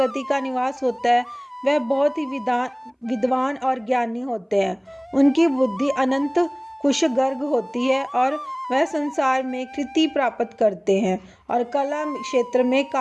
का निवास होता है वह बहुत ही विद्वान और ज्ञानी होते हैं। उनकी बुद्धि अनंत कुशगर्ग होती है और वह संसार में कृति प्राप्त करते हैं और कला क्षेत्र में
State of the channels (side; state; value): both; identical; correlation 1.00